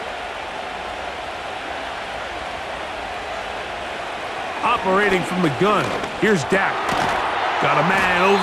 Operating from the gun. Here's Dak. Got a man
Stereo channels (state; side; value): identical; both; correlation 1.00